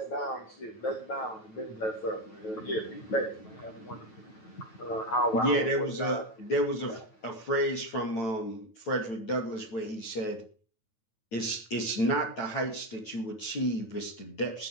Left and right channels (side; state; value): right; late; 9.2 ms